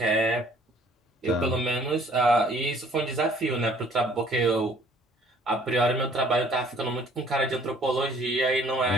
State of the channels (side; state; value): both; normal; correlation 0.57